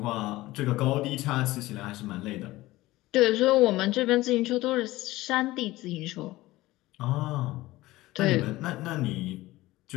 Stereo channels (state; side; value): quieter; right; 18.1 dB